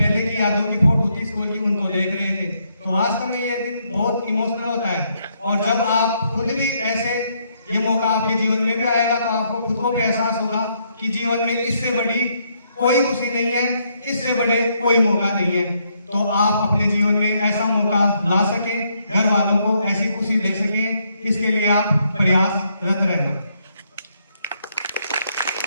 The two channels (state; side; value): inverted; both; correlation -0.74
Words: की यादों की फोटो थी स्कूल की उनको देख रहे थे। तो वास्तव में ये दिन बहुत इमोशनल होता है और जब आप खुद भी ऐसे ये मौका आपके जीवन में भी आएगा तो आपको खुद को भी एहसास होगा कि जीवन में इससे बड़ी कोई खुशी नहीं है, इससे बड़े कोई मौका नहीं है। तो आप अपने जीवन में ऐसा मौका ला सके, घर वालों को ऐसी खुशी दे सके, इसके लिए आप प्रयासरत रहना।